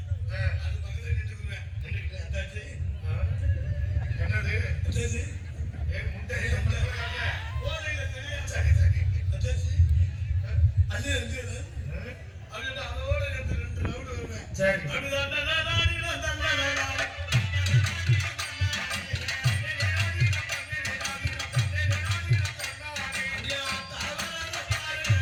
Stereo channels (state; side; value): identical; both; correlation 1.00